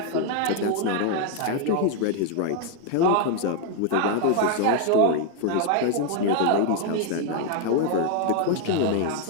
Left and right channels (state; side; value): different; both; correlation 0.00